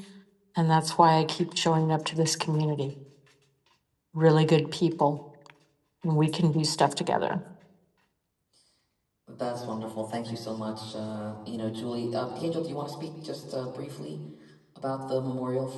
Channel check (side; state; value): both; identical; correlation 1.00